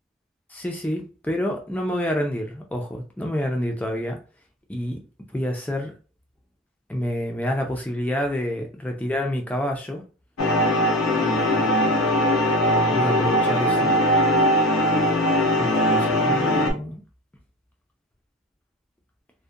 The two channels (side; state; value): both; normal; correlation 0.32